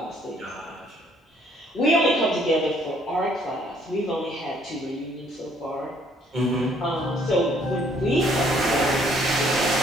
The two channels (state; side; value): normal; both; correlation 0.64